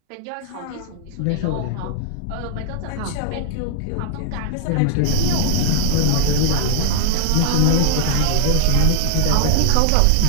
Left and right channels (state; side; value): different; both; correlation 0.00